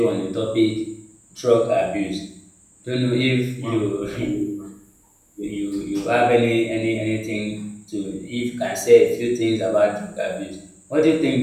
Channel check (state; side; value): identical; both; correlation 1.00